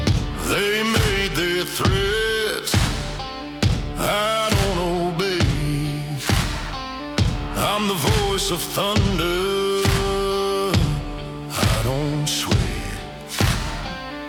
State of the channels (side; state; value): both; identical; correlation 1.00